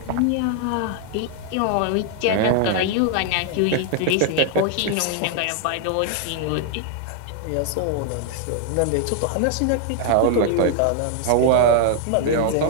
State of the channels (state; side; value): different; both; correlation 0.00